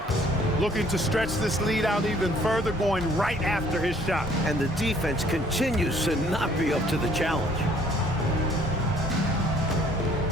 Looking to stretch this lead out even further, going right after his shot. And the defense continues to not be up to the challenge.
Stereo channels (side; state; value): both; normal; correlation 0.60